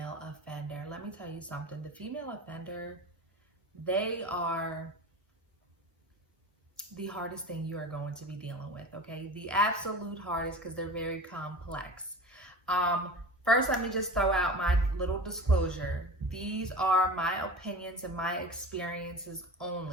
offender. Let me tell you something. The female offender, they are the hardest thing you are going to be dealing with, okay? The absolute hardest because they're very complex. Um, First, let me just throw out my little disclosure. These are my opinions and my experiences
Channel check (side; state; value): both; normal; correlation 0.34